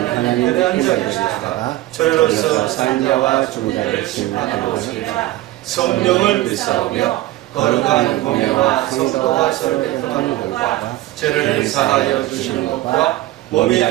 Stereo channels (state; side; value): quieter; left; 16.5 dB